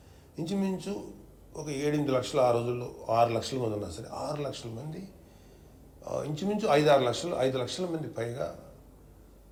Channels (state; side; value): identical; both; correlation 1.00